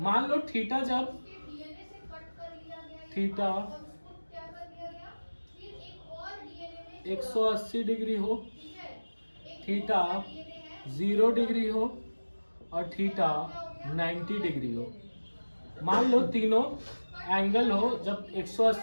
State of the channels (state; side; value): inverted; both; correlation -1.00